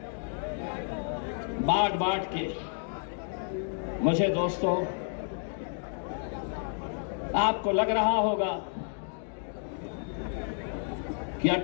बांट के मुझे दोस्तों, आपको लग रहा होगा कि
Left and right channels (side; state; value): right; silent; 57 dB below the other